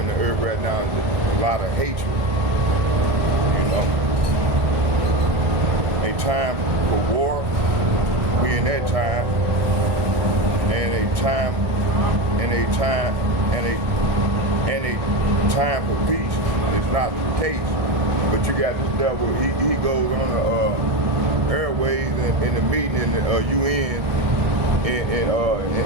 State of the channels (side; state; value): left; late; 1.6 ms